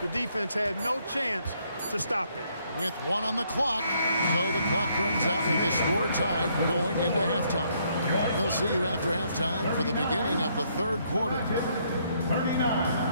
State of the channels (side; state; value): both; inverted; correlation -0.70